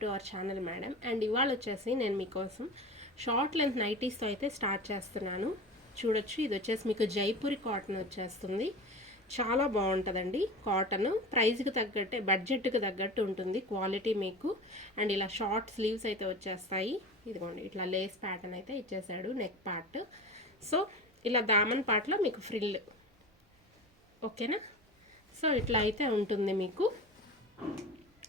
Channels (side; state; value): both; normal; correlation 0.32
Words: to our channel madam. And ఇవాళ వచ్చేసి నేను మీకోసం షార్ట్ లెంత్ నైటీస్తో అయితే స్టార్ట్ చేస్తున్నాను. చూడొచ్చు, ఇది వచ్చేసి మీకు జైపూరి కాటన్ వచ్చేస్తుంది. చాలా బాగుంటుందండి కాటన్. ప్రైస్కి తగ్గట్టే, బడ్జెట్కి తగ్గట్టు ఉంటుంది క్వాలిటీ మీకు. అండ్ ఇలా షార్ట్ స్లీవ్స్ అయితే వచ్చేస్తాయి. ఇదిగోండి, ఇట్లా లేస్ ప్యాటర్న్ అయితే ఇచ్చేసాడు నెక్ పార్ట్. సో ఇలా దామన్ పార్ట్లో మీకు ఫ్రిల్, ఓకేనా. సో ఇట్లా అయితే ఉంటుంది మీకు.